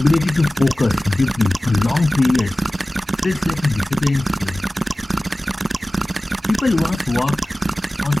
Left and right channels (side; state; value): both; normal; correlation 0.97